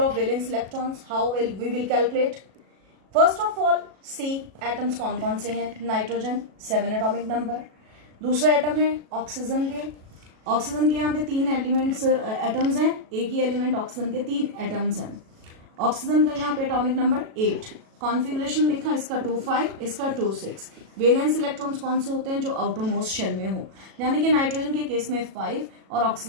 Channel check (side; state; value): left; late; 37 ms